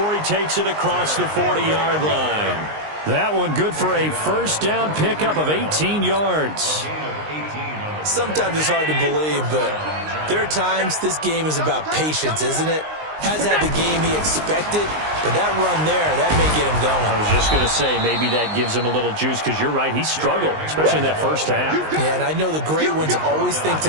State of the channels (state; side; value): late; left; 19 ms